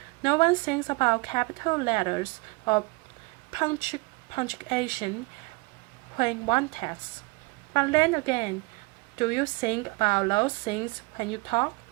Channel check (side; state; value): left; quieter; 26.1 dB